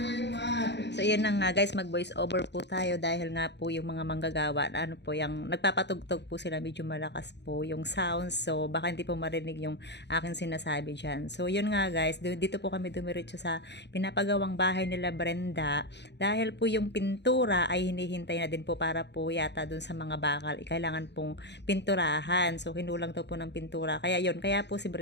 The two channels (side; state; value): right; late; 0.50 ms